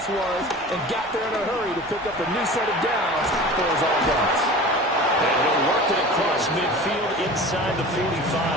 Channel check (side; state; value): both; normal; correlation 0.38